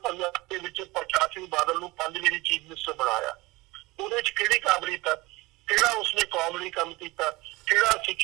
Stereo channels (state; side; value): quieter; left; 21.8 dB